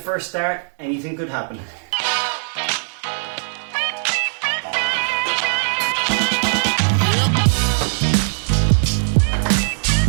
start, anything could happen.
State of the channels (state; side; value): silent; left; digital silence